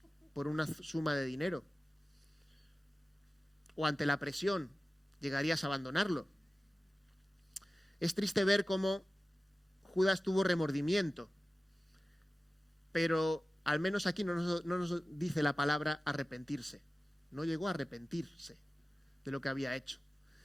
por una suma de dinero? ¿O ante la presión llegarías a abandonarlo? Es triste ver cómo Judas tuvo remordimiento, pero al menos aquí no nos dice la palabra arrepentirse. No llegó a arrepentirse de lo que había hecho.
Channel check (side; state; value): both; normal; correlation 0.96